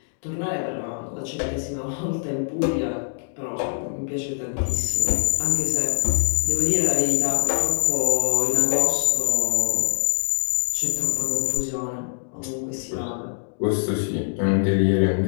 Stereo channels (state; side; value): silent; right; digital silence